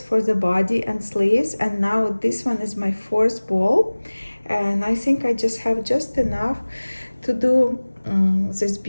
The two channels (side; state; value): both; inverted; correlation -1.00